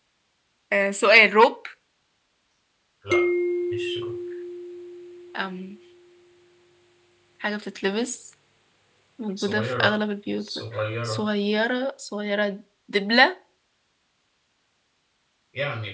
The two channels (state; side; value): identical; both; correlation 1.00